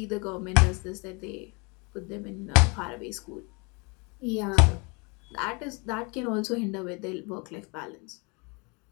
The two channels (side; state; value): right; quieter; 30.6 dB